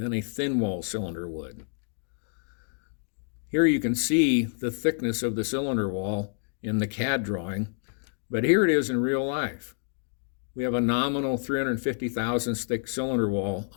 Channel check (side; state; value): right; silent; 59 dB below the other